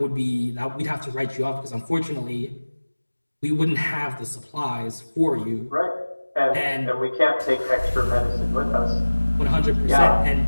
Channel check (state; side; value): inverted; both; correlation -1.00